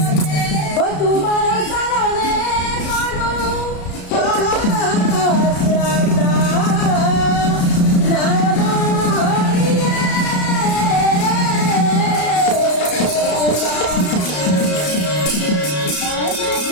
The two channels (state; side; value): late; right; 33 ms